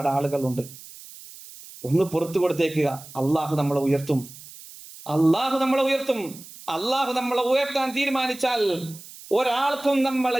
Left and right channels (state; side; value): noise; right; hiss, 17 dB below the sound